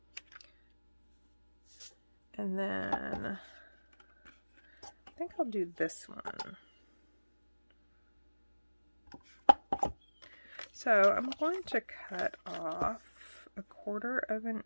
And then I think I'll do this one. So I'm going to cut off 1/4 of an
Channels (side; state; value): both; inverted; correlation -1.00